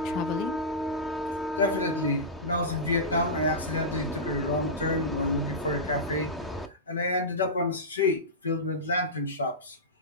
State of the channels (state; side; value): normal; both; correlation -0.14